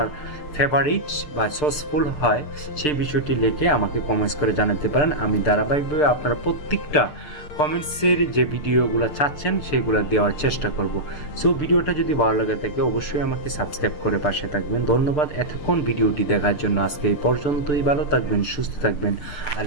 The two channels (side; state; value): right; late; 6.7 ms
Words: ফেভারিট বা সসফুল হয়, সেই বিষয়টি লিখে আমাকে কমেন্টস করে জানাতে পারেন। আমি ধারাবাহিকভাবে আপনারা প্রত্যেকটা কমেন্টসের যে ভিডিওগুলো চাচ্ছেন সেগুলো দেওয়ার চেষ্টা করব। সো ভিডিওটা যদি ভালো লাগে থাকে অবশ্যই আমাকে সাবস্ক্রাইব করে পাশে থাকবেন। ধন্যবাদ এতক্ষণ ভিডিওটি দেখার জন্য। আজকে এই পর্যন্তই। ভালো থাকবেন, সুস্থ থাকবেন।